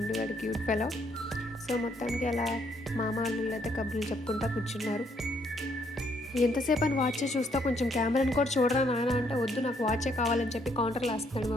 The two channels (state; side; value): normal; both; correlation 0.70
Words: క్యూట్ ఫెలో. సో మొత్తానికి అలా మామ అల్లుళ్ళు అయితే కబుర్లు చెప్పుకుంటూ కూర్చున్నారు. ఎంతసేపు అని వాచే చూస్తా, కొంచెం కెమెరాని కూడా చూడరా నాయన అంటే, వద్దు నాకు వాచే కావాలని చెప్పి కౌంటర్లో వేస్తున్నాడు